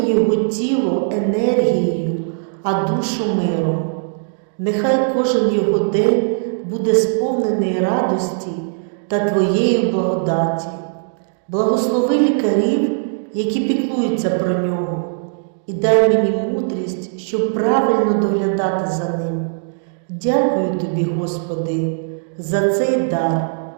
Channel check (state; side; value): silent; left; digital silence